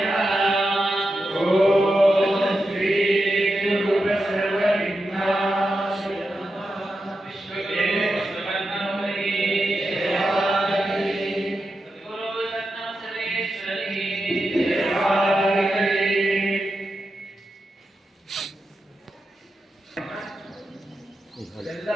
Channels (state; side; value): normal; both; correlation 0.89